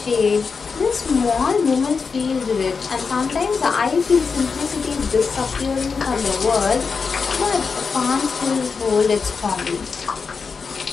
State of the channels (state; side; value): quieter; right; 5.2 dB